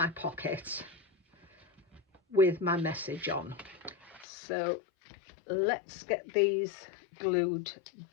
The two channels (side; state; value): right; drops out; at 4.2 s